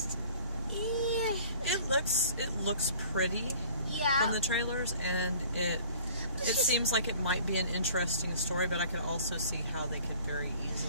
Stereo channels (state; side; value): inverted; both; correlation -0.50